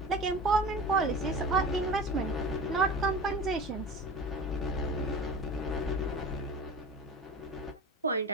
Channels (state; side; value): normal; both; correlation 0.34